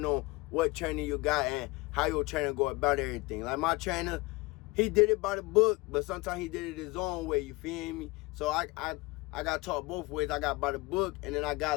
on what trainer you got and how your trainer go about everything. Like my trainer, he did it by the book, but sometimes he did it his own way. You feel me? So I got taught both ways. I got by the book, and then I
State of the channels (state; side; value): quieter; right; 22.9 dB